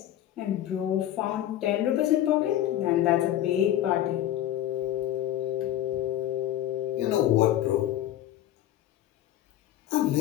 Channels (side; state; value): right; quieter; 12.6 dB